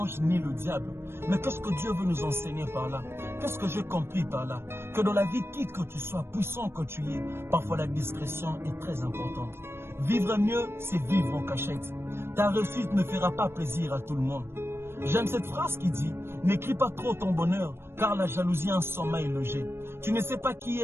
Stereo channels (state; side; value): late; left; 0.12 ms